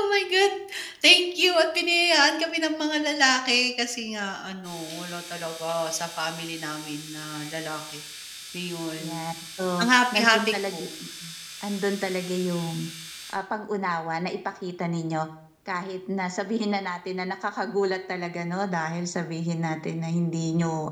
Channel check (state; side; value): identical; both; correlation 1.00